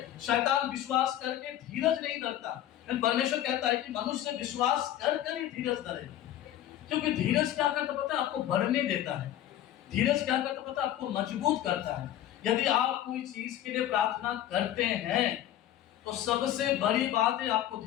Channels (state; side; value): quieter; right; 12.1 dB